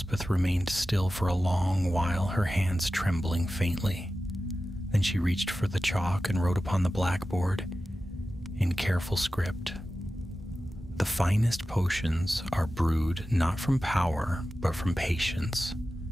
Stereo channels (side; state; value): both; normal; correlation 0.94